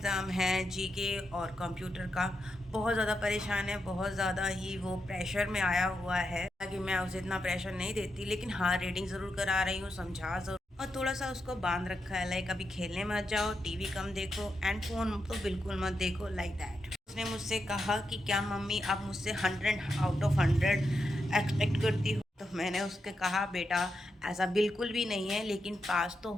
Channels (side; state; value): both; normal; correlation 0.86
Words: है जीके और कंप्यूटर का। बहुत ज़्यादा परेशान है, बहुत ज़्यादा ही वो प्रेशर में आया हुआ है। ताकि मैं उसे इतना प्रेशर नहीं देती, लेकिन हाँ, रीडिंग ज़रूर करा रही हूँ, समझा ज़रूर और थोड़ा सा उसको बांध रखा है। लाइक अभी खेलने मत जाओ, टीवी कम देखो एंड फ़ोन तो बिल्कुल मत देखो, लाइक दैट। उसने मुझसे कहा कि क्या मम्मी आप मुझसे 100 आउट ऑफ 100 एक्सपेक्ट करती हो। तो मैंने उसके कहा बेटा ऐसा बिल्कुल भी नहीं है, लेकिन पास तो